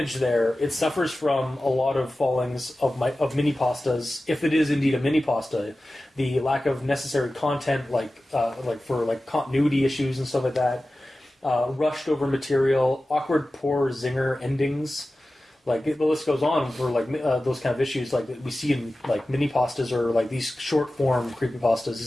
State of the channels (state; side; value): normal; both; correlation 0.95